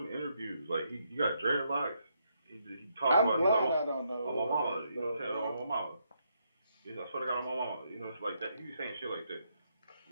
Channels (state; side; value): inverted; both; correlation -0.77